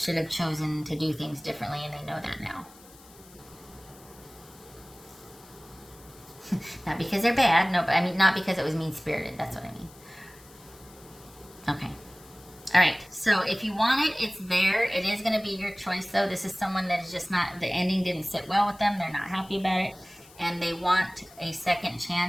have chosen to do things differently, and they know that now. Not because they're bad, no, but not because it was mean-spirited. That's what I mean. Okay. All right. So if you want it, it's there. It is going to be your choice, though. This is someone that is just not, the ending didn't sit well with them. They're not happy about it. And they want a second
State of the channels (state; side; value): noise; left; hiss, 23 dB below the sound